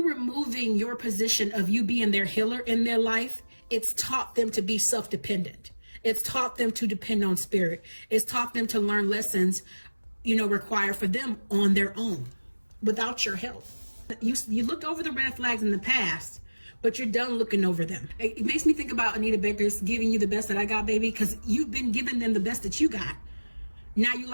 removing your position of you being their healer in their life, it's taught them to be self-dependent. It's taught them to depend on spirit. It's taught them to learn lessons, you know, required for them on their own, without your help. You looked over the red flags in the past, but you're done looking over them. It makes me think about Anita Baker's giving you the best that I got, baby, because you've been giving them the best that you got. Now you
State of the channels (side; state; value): both; inverted; correlation -1.00